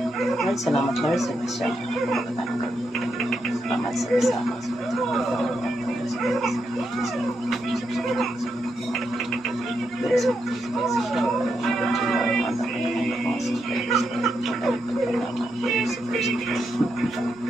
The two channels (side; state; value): both; normal; correlation 0.82